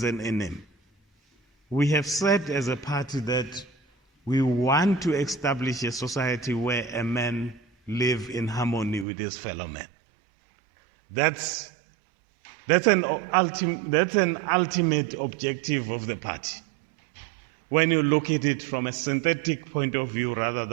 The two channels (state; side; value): drops out; left; at 9.1 s